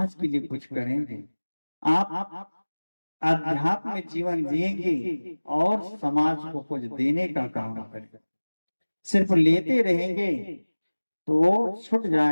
के लिए कुछ करेंगे, आप अध्यात्म में जीवन जिएंगे और समाज को कुछ देने का काम करेंगे। सिर्फ लेते रहेंगे तो छूट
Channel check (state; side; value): inverted; both; correlation -1.00